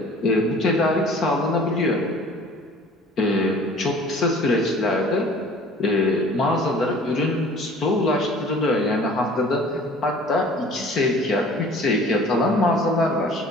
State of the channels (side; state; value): both; normal; correlation 0.48